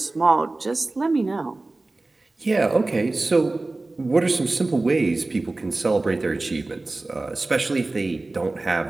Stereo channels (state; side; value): quieter; left; 3.1 dB